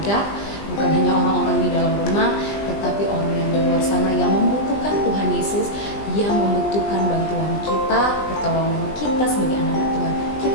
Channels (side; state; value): right; late; 20 ms